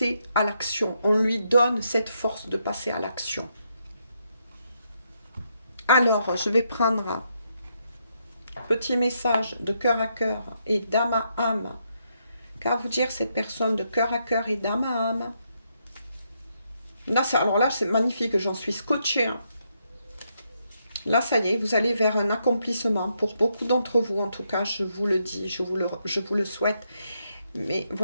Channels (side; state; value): both; inverted; correlation -0.78